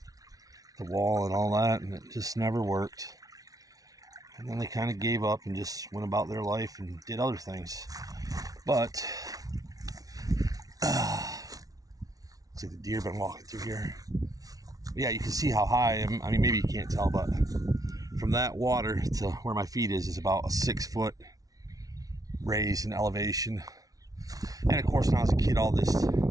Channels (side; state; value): left; late; 0.18 ms